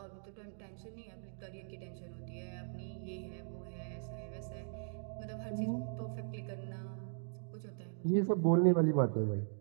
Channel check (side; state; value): left; silent; digital silence